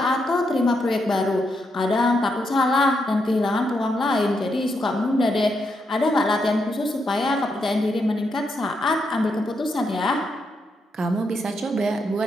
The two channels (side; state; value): both; normal; correlation 0.81